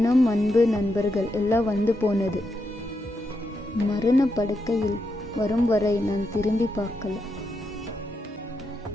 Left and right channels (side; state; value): both; normal; correlation 0.83